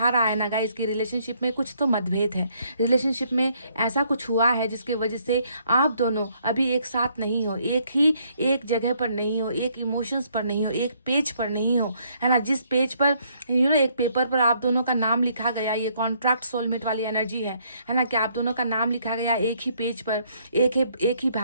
रहा है ना गाइस कि रिलेशनशिप में कुछ तो मतभेद है, रिलेशनशिप में ऐसा कुछ हुआ है जिसके वजह से आप दोनों अभी एक साथ नहीं हो, एक जगह पर नहीं हो, एक इमोशंस पर नहीं हो, एक पेज पर नहीं हो, है ना, जिस पेज पर एक पेपर पर आप दोनों का नाम लिखा गया, ये कॉन्ट्रैक्ट सोलमेट वाली एनर्जी है ना, कि आप दोनों का नाम लिखा गया एक ही पेज पर, एक ही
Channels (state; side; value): inverted; both; correlation -0.69